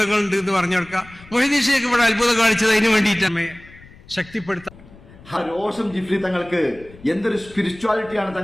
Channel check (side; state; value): left; noise; rumble, 22 dB below the sound